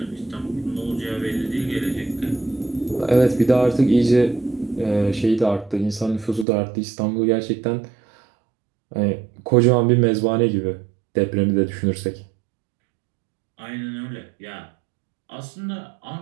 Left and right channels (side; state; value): left; drops out; at 6.5 s